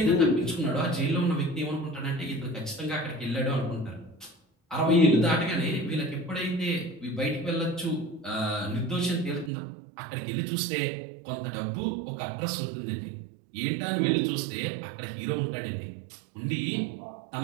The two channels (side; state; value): left; drops out; at 9.5 s